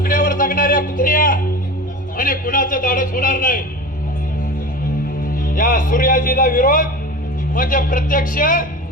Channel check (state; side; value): normal; both; correlation 0.32